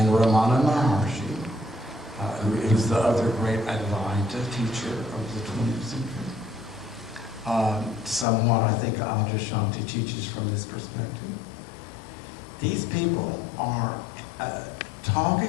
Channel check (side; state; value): right; drops out; at 8.2 s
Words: Ramana Maharshi, who is the other great Advaita teacher of the 20th century, somewhat I think Adyashanti teaches from this perspective. These people are